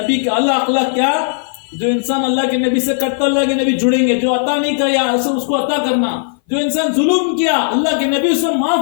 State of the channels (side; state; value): right; silent; 59 dB below the other